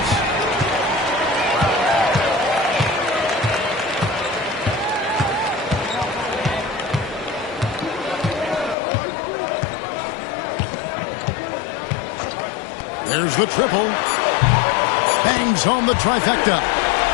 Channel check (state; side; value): drops out; right; at 8.8 s